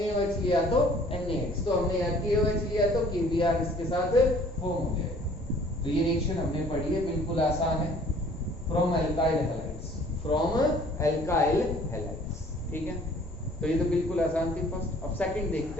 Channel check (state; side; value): normal; both; correlation 0.54